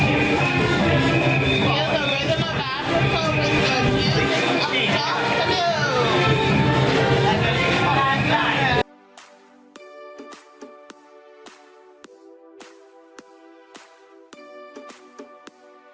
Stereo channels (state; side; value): identical; both; correlation 1.00